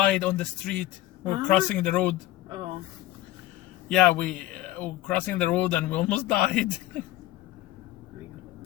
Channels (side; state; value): right; quieter; 15.8 dB